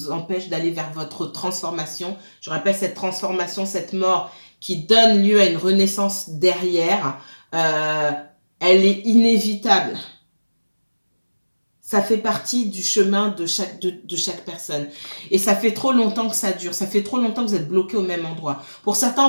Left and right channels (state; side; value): inverted; both; correlation -1.00